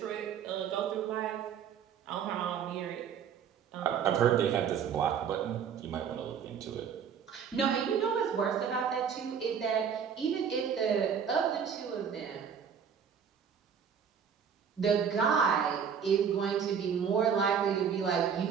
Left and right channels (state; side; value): quieter; left; 7.4 dB